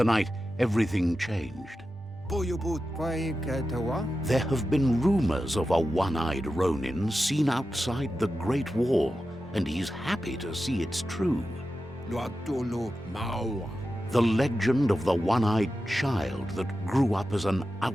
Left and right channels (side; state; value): both; normal; correlation 0.92